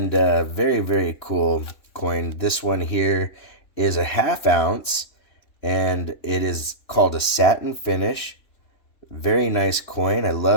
very, very cool coin. This one here is a 1/2 ounce, and it is called a satin finish. Very nice coin. I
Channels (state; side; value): late; right; 2.9 ms